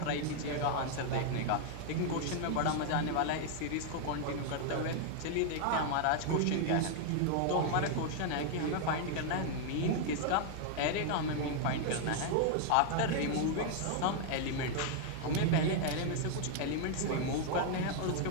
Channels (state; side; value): different; both; correlation 0.00